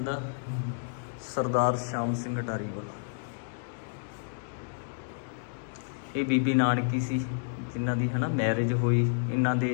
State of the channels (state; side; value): silent; right; digital silence